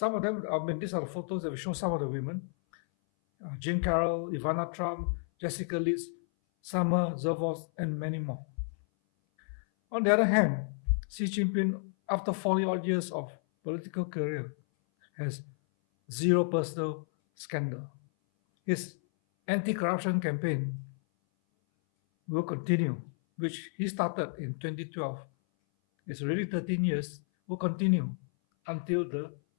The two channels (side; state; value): right; silent; 57 dB below the other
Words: of them. I mean, these are the photos that we show some of the women. Jean Carroll, Ivana Trump, Jessica Liz, Summer Zervos, and many more. On the other hand, Xi Jinping, after 40-odd years of political career, has zero personal scandal. His anti-corruption campaign will continue, which he started in 2012. It's already 13 years, will continue until the